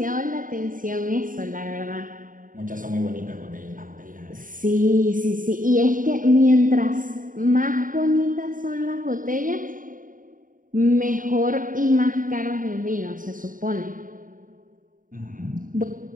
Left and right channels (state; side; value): late; left; 0.39 ms